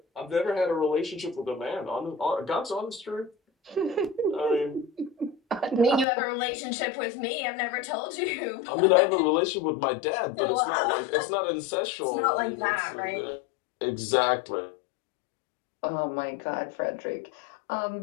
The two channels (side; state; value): right; drops out; at 6.1 s